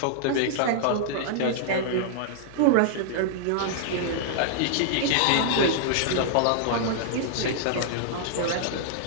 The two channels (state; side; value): different; both; correlation -0.01